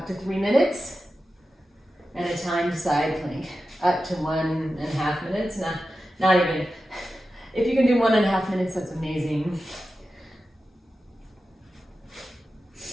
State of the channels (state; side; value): normal; both; correlation 0.92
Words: to 3 minutes and a timed side plank up to 1.5 minutes. Not even. If you can do 1.5 minutes, that's amazing.